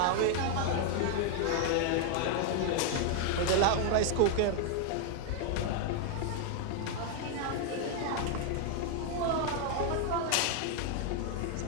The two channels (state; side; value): different; both; correlation 0.00